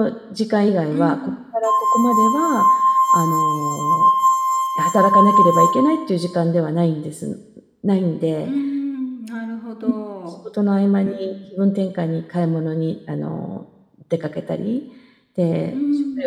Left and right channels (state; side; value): identical; both; correlation 1.00